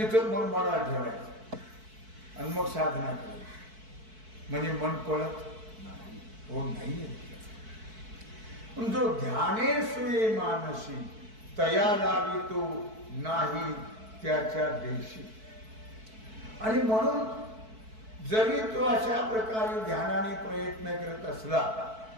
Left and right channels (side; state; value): left; late; 4.6 ms